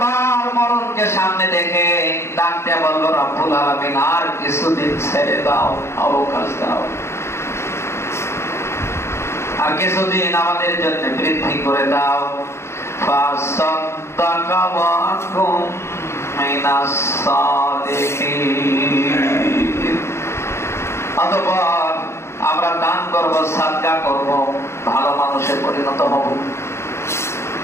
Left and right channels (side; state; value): right; late; 0.13 ms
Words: মরণকে সামনে দেখে ডাকতে বলবো, রব্বুল আলামিন আর কিছুদিন ছেড়ে দাও, অবকাশ দাও, আর কিছুদিন আমাদের জন্য বৃদ্ধি করে দাও। ফাসাদ্দাকা ওয়া কুম মিনাস সালিহিন। অতঃপর আমরা দান করব, সাদকা করব, ভালো মানুষে পরিণত হব।